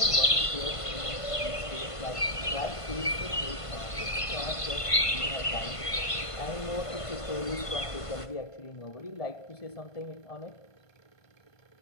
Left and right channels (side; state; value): right; late; 1.5 ms